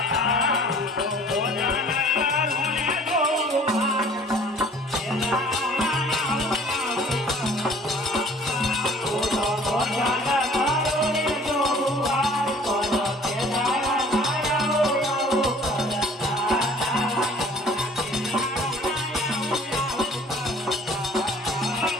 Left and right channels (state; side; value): normal; both; correlation 0.52